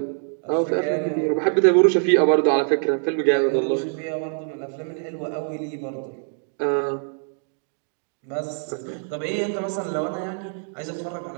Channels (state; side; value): silent; left; 57 dB below the other